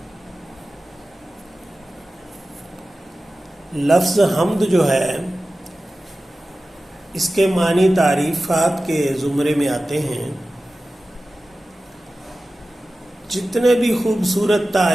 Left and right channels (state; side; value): normal; both; correlation 0.95